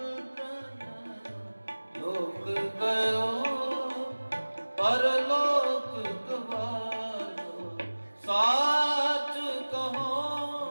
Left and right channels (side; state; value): both; inverted; correlation -1.00